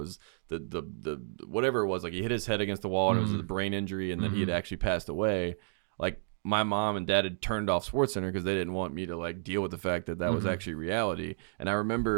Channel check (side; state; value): left; silent; digital silence